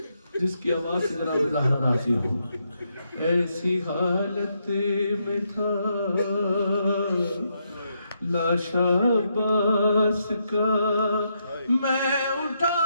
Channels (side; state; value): both; inverted; correlation -0.80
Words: جس کی آواز سے ذرا زہرا راضی ہو. ایسی حالت میں تھا لاش عباس کا. میں